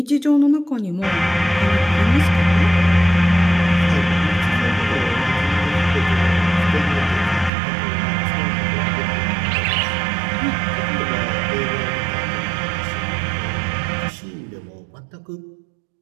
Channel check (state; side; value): drops out; left; at 7.5 s